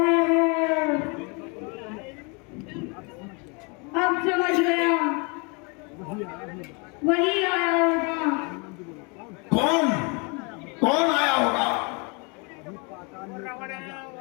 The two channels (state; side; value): quieter; right; 32.1 dB